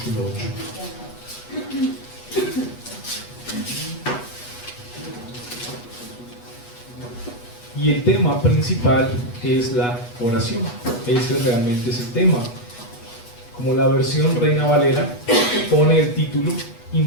8. Y el tema principal es la oración. Ese realmente es el tema. Como la versión Reina Valera pone el título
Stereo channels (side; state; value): right; late; 8.2 ms